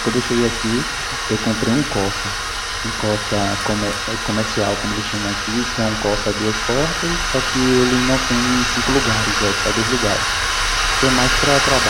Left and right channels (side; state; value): both; identical; correlation 1.00